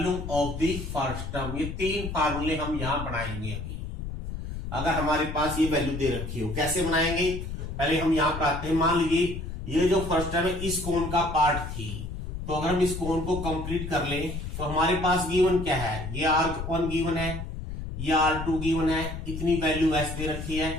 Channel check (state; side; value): noise; left; rumble, 7 dB below the sound